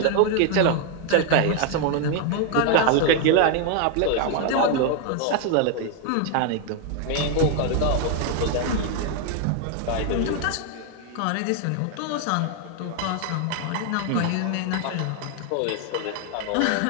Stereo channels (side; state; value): both; different; correlation 0.01